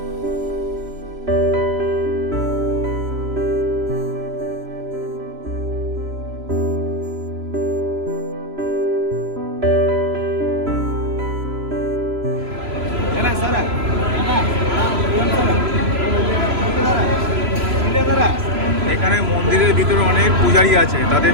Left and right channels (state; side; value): late; left; 3.0 ms